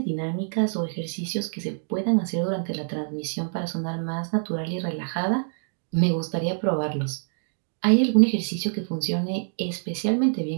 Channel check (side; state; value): left; silent; digital silence